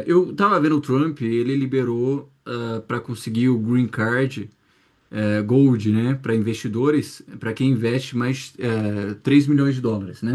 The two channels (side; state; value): both; identical; correlation 1.00